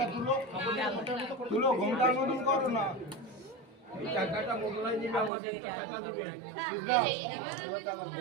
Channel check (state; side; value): drops out; left; at 5.3 s